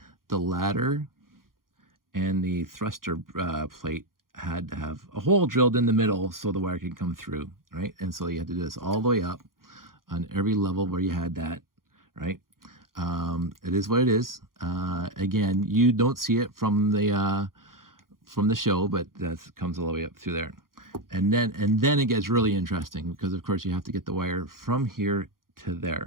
the ladder and the thruster plate had to have a hole drilled in the middle so the wire could come through, right? And so you had to do this all the way up on every level where you had that, right? It is what it is. Again, you don't see it from the show, but that comes all the way up through there. And then it gets really interesting because of course you have to get the wire from here to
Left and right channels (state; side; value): late; left; 0.91 ms